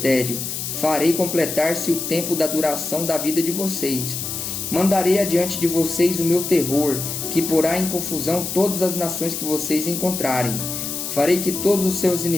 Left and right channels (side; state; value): left; noise; hiss, 5 dB below the sound